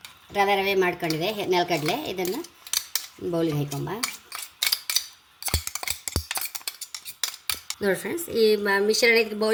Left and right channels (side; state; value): both; identical; correlation 1.00